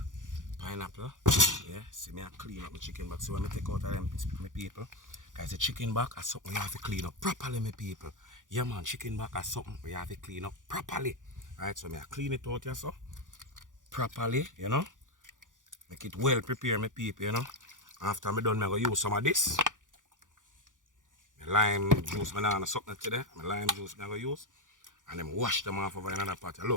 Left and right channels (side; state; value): left; late; 0.88 ms